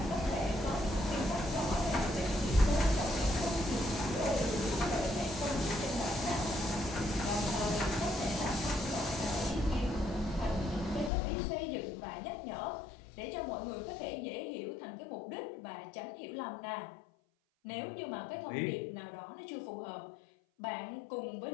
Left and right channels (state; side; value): drops out; right; at 11.1 s